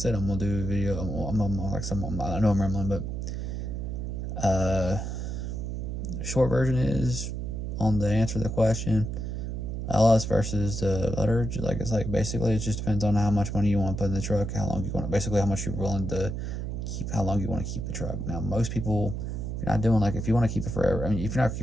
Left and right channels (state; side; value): noise; right; hum, 4 dB below the sound